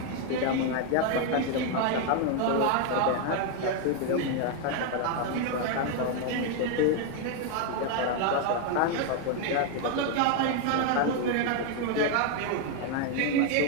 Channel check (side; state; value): both; different; correlation 0.01